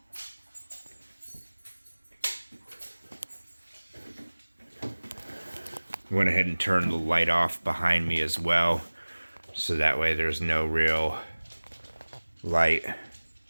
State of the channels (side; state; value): both; inverted; correlation -1.00